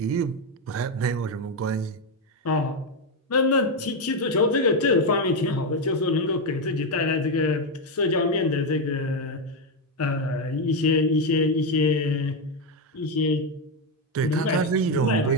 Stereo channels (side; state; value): both; normal; correlation 0.07